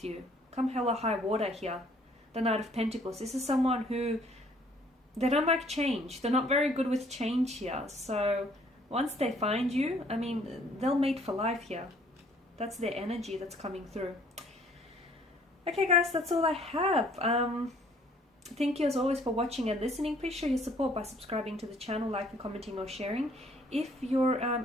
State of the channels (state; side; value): normal; both; correlation 0.60